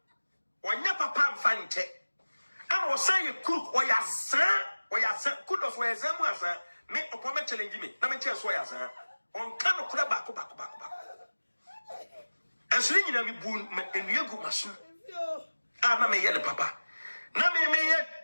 Wanya papa mfa nche. Ana osan ye crook oya za kudos we zamu asa me opome challenge me na me che so ya za. On kan no kura bako. Esri nyina mi bu enua gu maso. Ana me ye ne papa. Na me ye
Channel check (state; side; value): inverted; both; correlation -1.00